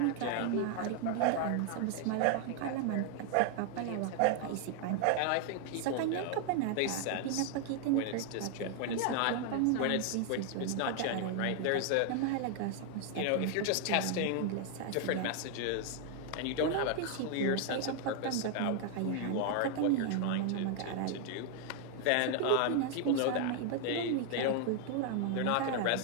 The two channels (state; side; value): different; both; correlation 0.00